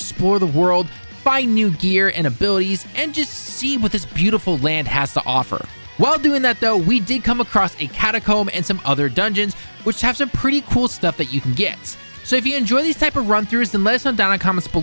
the world, find new gear and abilities, and just see what this beautiful land has to offer. While doing that though, we did come across a catacomb and some other dungeons, which have some pretty cool stuff that you can get. So if you enjoy these type of run-throughs, then let us know down in the comments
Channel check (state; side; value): inverted; both; correlation -1.00